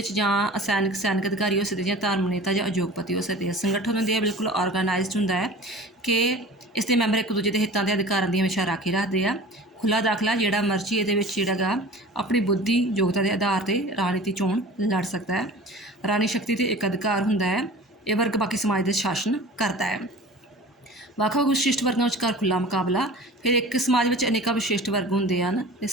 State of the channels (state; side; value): normal; both; correlation 0.40